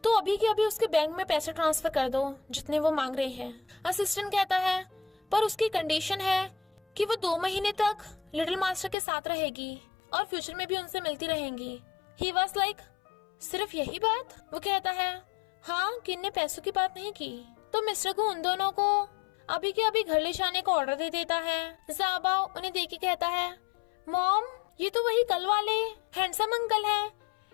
तो अभी के अभी उसके बैंक में पैसे ट्रांसफर कर दो जितने वो मांग रहे हैं। असिस्टेंट कहता है, पर उसकी कंडीशन है कि वो 2 महीने तक लिटिल मास्टर के साथ रहेगी और फ्यूचर में भी उनसे मिलती रहेंगी। ही वाज लाइक, सिर्फ यही बात? वो कहता है, हाँ, किन ने पैसों की बात नहीं की। तो मिस्टर को उन दोनों को अभी के अभी घर ले जाने का ऑर्डर दे देता है। ज़ाओबाओ उन्हें देख के कहता है, मॉम ये तो वही कल वाले हैंडसम अंकल हैं,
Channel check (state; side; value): drops out; right; at 9.0 s